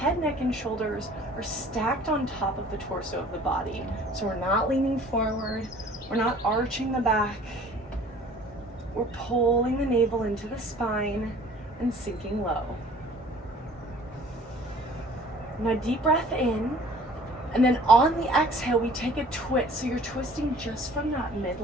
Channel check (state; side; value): normal; both; correlation 0.51